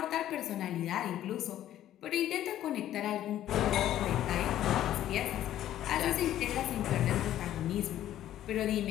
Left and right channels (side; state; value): right; quieter; 12.3 dB